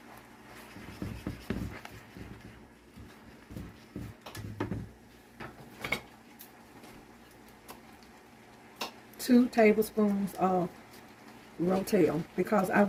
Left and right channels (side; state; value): both; identical; correlation 1.00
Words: Two tablespoons of Ro-Tel because I